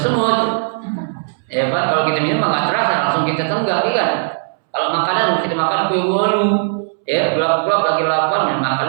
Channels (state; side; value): silent; left; 68 dB below the other